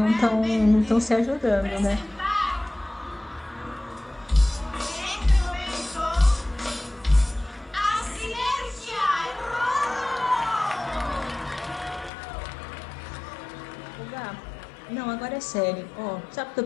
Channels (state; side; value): drops out; right; at 12.1 s